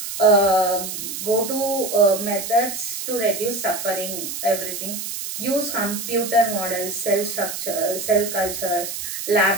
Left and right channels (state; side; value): noise; right; hiss, 6 dB below the sound